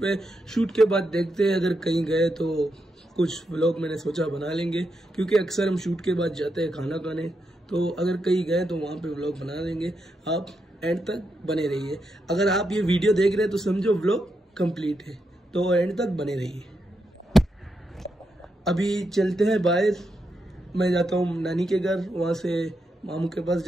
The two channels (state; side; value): normal; both; correlation 0.84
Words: पे। शूट के बाद देखते हैं, अगर कहीं गए तो कुछ व्लॉग मैंने सोचा बना लेंगे, क्योंकि अक्सर हम शूट के बाद जाते हैं खाना खाने। तो अगर कहीं गए तो वहाँ पे व्लॉग बना देंगे। आप एंड तक बने रहिए। अगर आप ये वीडियो देख रहे हैं तो समझो व्लॉग कंप्लीट है, तो एंड तक बने रहिए। अभी चलते हैं बाहर। मैं जाता हूँ नानी के घर, वहाँ से मामू के पास